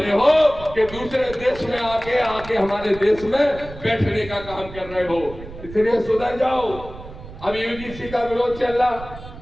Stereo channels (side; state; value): right; noise; rumble, 14 dB below the sound